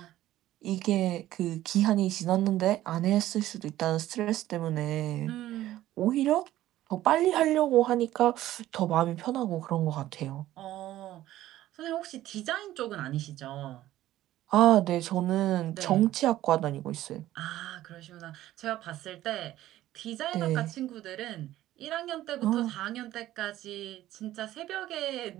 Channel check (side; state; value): left; quieter; 14.3 dB